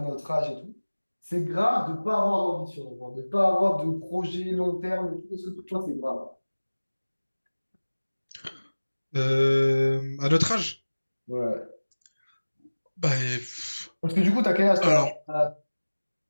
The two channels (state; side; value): inverted; both; correlation -1.00